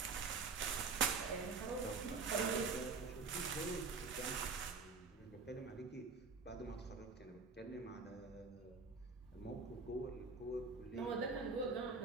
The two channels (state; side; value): quieter; left; 4.5 dB